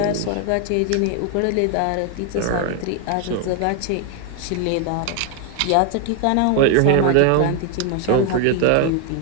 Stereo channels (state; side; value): different; both; correlation 0.01